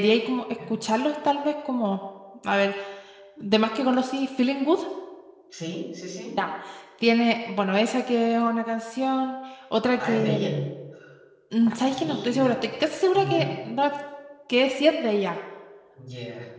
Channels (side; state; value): both; identical; correlation 1.00